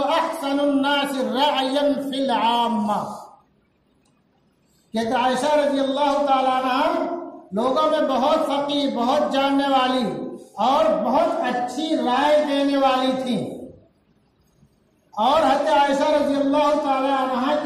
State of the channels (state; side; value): identical; both; correlation 1.00